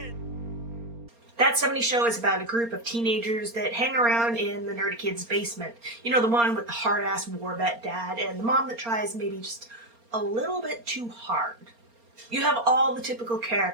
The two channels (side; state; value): left; late; 4.3 ms